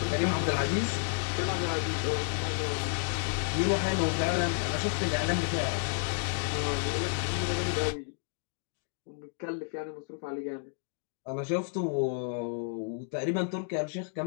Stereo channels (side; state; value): right; silent; digital silence